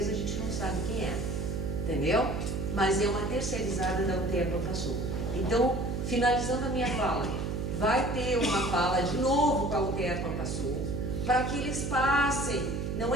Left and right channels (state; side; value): noise; right; hum, 2 dB below the sound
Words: a gente não sabe quem é, entendeu? Mas é uma terceirizada da UTE Profasul. Então, finalizando a minha fala, vai ter uma fala de novo com a UTE Profasul, para que eles passem. Não